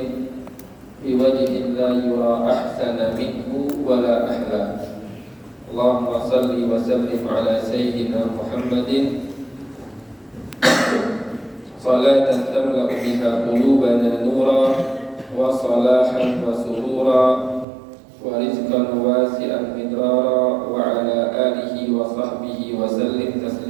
biwajhin la yura ahsana minhu wala ahla. Allahumma salli wa sallim ala sayyidina Muhammadin salatan tamla'u biha qulubana nura wa salahan wa surura wa rizqan wasi'an midrara wa ala alihi wa sahbihi wa sallim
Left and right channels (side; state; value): left; drops out; at 17.7 s